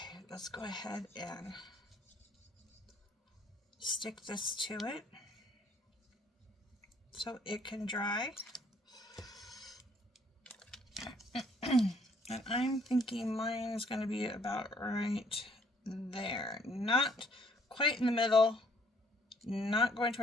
let's go ahead and stick this to it so it can dry. And I'm thinking mine is going to be about right there. Not quite in the middle, not going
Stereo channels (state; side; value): normal; both; correlation 0.64